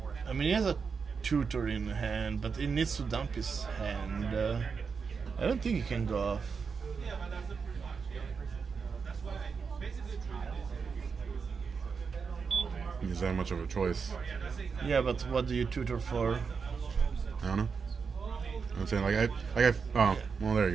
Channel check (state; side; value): quieter; left; 5.6 dB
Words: I mean, he has a tutor in hand, but he needs to dump his hand. I don't think he can go off. He's that much of a choice. Yeah, but what do you tutor for? I don't know. I'm saying oh, well, there you